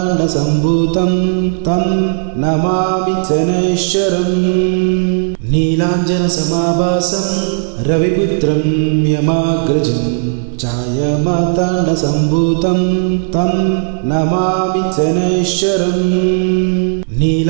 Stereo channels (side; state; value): left; silent; 70 dB below the other